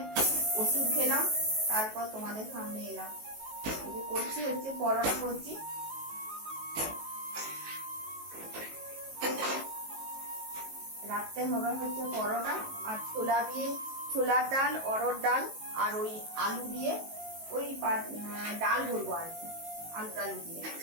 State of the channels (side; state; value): left; late; 19 ms